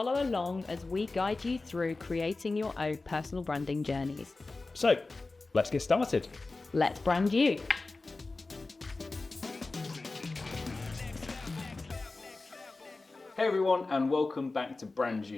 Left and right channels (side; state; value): right; quieter; 3.5 dB